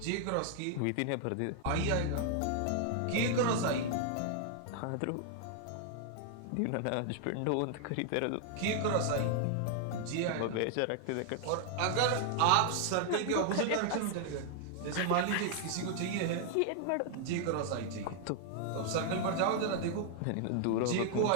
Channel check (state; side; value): different; both; correlation 0.00